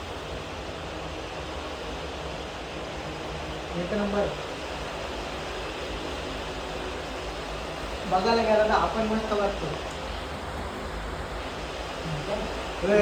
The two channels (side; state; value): both; identical; correlation 1.00